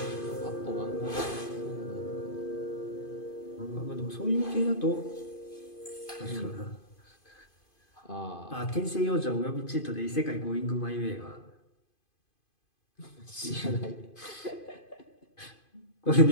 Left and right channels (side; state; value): right; late; 2.5 ms